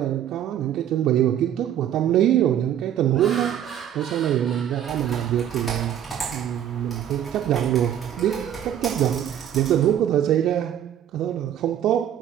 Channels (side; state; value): left; quieter; 10.4 dB